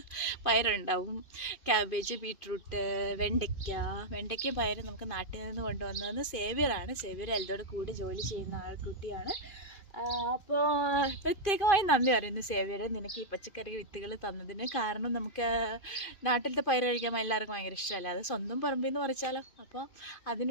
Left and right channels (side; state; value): right; late; 2.5 ms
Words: പയറുണ്ടാവും, ക്യാബേജ്, ബീട്രൂട്ട്, വെണ്ടയ്ക്ക പയർ നമുക്ക് നാട്ടിൽ നിന്ന് കൊണ്ടുവന്നതെന്ന് സേവ്യർ എൽദോടെ കൂടെ ജോലി ചെയ്യുന്ന ആൾക്കുട്ടിയാണ്. അപ്പോൾ പ്രത്യേകമായി നന്ദി പറയുന്നു സേവ്യർ, നിനക്ക് ഈ പച്ചക്കറി വിത്തുകൾ തന്നതിന്. കാരണം നമുക്ക് നാട്ടിലത്തെ പയർ കഴിക്കാൻ എല്ലാവർക്കും ഭയങ്കര ഇഷ്ടമല്ല, അത് സ്വന്തം പറമ്പിൽ നിന്ന് പറിച്ചാലോ. അപ്പോൾ